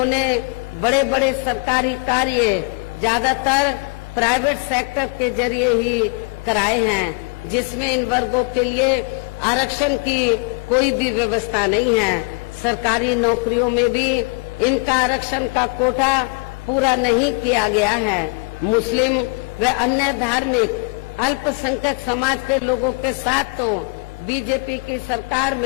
बड़े बड़े सरकारी कार्य ज्यादातर प्राइवेट सेक्टर के जरिए ही कराए हैं, जिसमें इन वर्गों के लिए आरक्षण की कोई भी व्यवस्था नहीं है। सरकारी नौकरियों में भी इनका आरक्षण का कोटा पूरा नहीं किया गया है। मुस्लिम व अन्य धार्मिक अल्पसंख्यक समाज के लोगों के साथ तो बीजेपी की सरकार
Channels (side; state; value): right; quieter; 32.5 dB